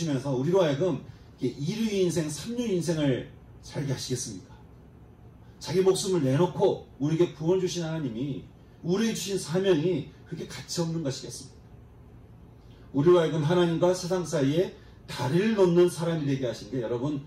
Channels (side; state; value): both; identical; correlation 1.00